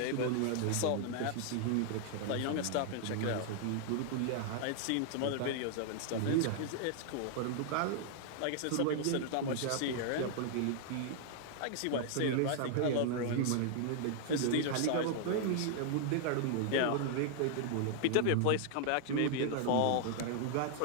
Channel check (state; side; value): different; both; correlation -0.01